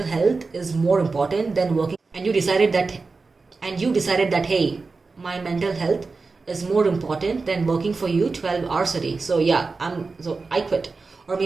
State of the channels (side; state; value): left; quieter; 4.1 dB